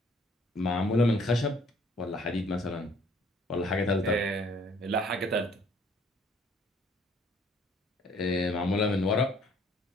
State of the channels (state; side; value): normal; both; correlation 0.59